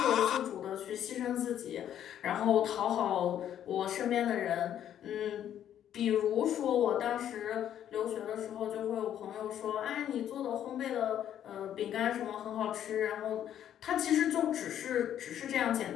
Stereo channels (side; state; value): right; quieter; 10.4 dB